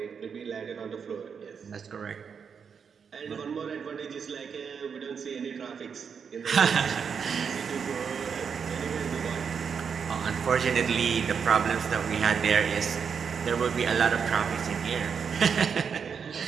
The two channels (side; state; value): left; quieter; 6.5 dB